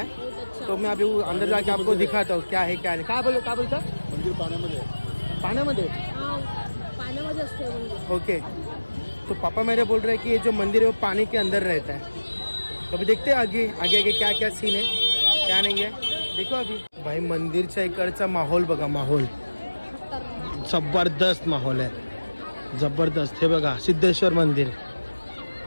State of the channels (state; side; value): inverted; both; correlation -1.00